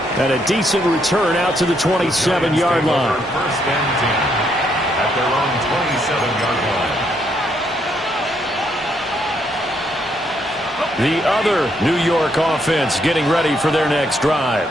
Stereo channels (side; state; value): both; normal; correlation 0.74